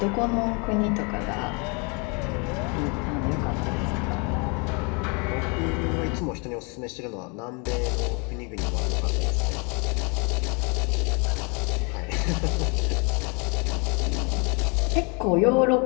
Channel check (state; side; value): quieter; right; 32.8 dB